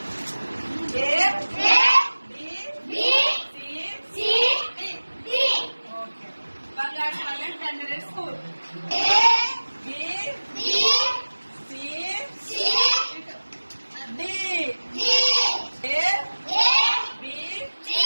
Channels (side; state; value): both; inverted; correlation -1.00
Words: బంగారు పల్లెం క్యాండిడేట్ స్కూల్.